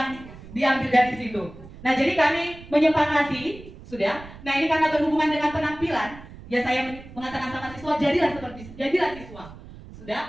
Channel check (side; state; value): right; noise; rumble, 17 dB below the sound